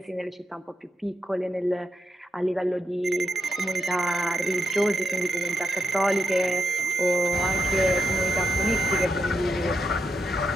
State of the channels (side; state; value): both; normal; correlation 0.84